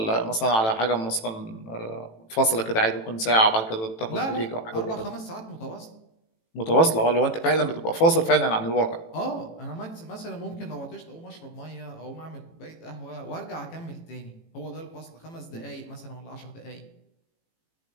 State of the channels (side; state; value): right; late; 18 ms